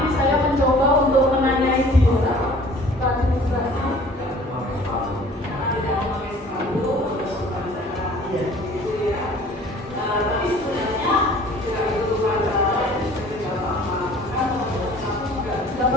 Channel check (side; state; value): both; normal; correlation 0.50